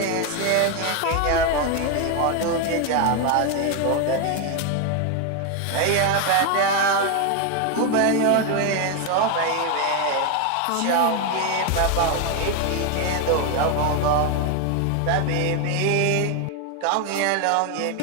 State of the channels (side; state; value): both; different; correlation 0.01